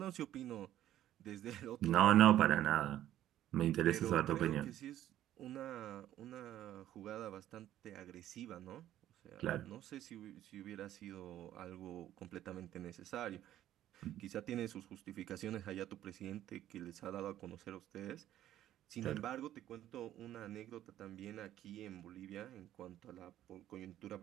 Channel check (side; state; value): left; quieter; 12.6 dB